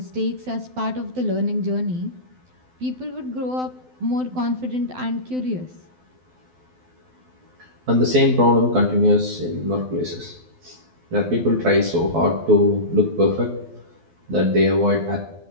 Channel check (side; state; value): left; late; 12 ms